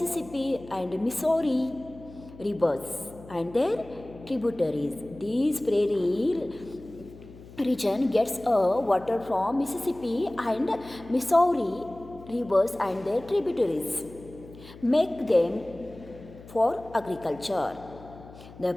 and Missouri rivers and their tributaries. These prairie region gets water from Mississippi and Missouri rivers and their tributaries, make them for agriculture. The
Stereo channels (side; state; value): left; noise; hum, 19 dB below the sound